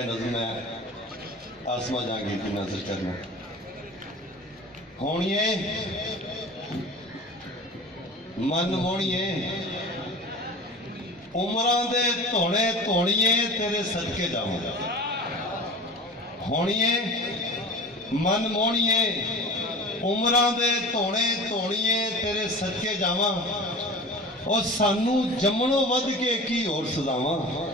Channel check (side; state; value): both; normal; correlation 0.36